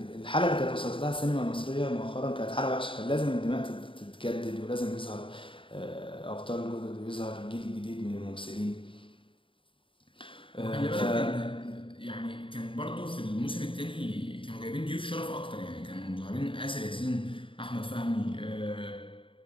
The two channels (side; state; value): right; late; 0.25 ms